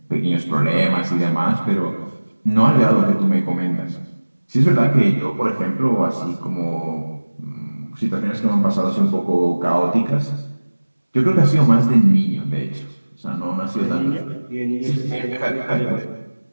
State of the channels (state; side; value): inverted; both; correlation -1.00